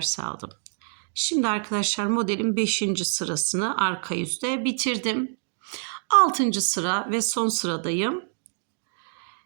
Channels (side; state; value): left; silent; digital silence